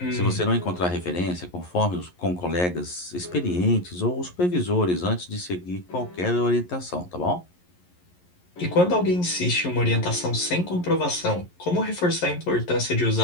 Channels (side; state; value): right; late; 11 ms